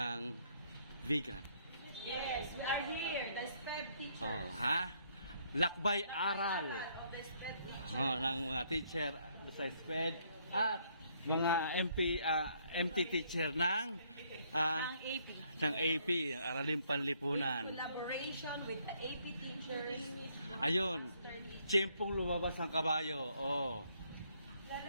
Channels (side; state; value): both; inverted; correlation -0.68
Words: vegan. Yes, we are here, the SPED teachers. Oh, ha? Lakbay aral. Of the SPED teachers. Oh, ng mga teacher sa SPED at mga MT teacher ng Ang AP. ng AP, Araling Panlipunan. Collaboration with the AP teachers. Ayun, tiyempong lumabas ang kabayo. Oh.